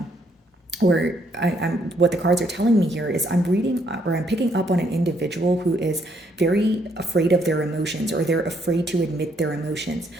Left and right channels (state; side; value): normal; both; correlation 0.71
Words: what the cards are telling me here is I'm reading or I'm picking up on an individual who is very afraid of their emotions, or they're afraid to admit their emotions.